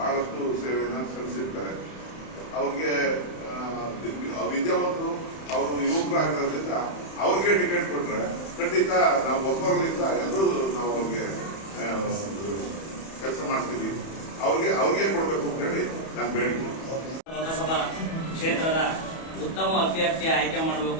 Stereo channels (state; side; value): late; right; 31 ms